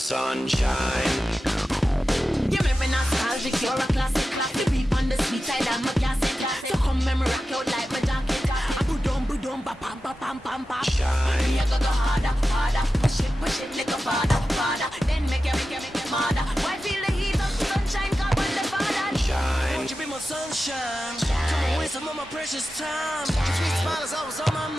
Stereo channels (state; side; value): normal; both; correlation 0.93